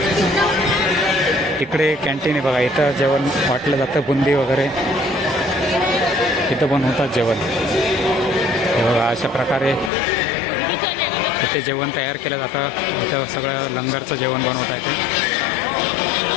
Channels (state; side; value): drops out; right; at 9.9 s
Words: इकडे कॅन्टीन आहे बघा, इथं जेवण वाटलं जातं, बुंदी वगैरे इथं बनवतात जेवण. हे बघा अशा प्रकारे इथे जेवण तयार केलं जातं. इथं सगळं लंगरचं जेवण बनवता येते.